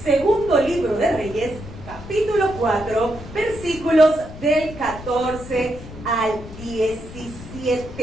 Segundo libro de Reyes, capítulo 4, versículos del 14 al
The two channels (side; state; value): left; noise; rumble, 14 dB below the sound